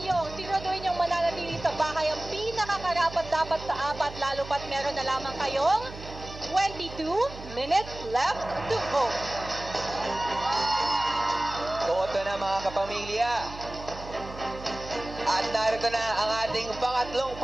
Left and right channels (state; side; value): noise; right; hum, 14 dB below the sound